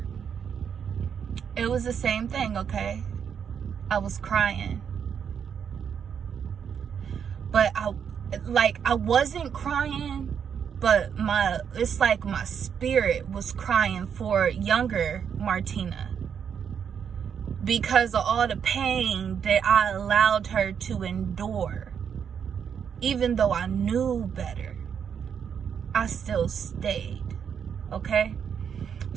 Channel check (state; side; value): quieter; left; 7.6 dB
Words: it was the same thing, okay? I was crying. But I wasn't crying, but it's like my spirit was crying for younger Martina, because of all the pain that I allowed her to endure. Even though I knew better, I still stayed, okay?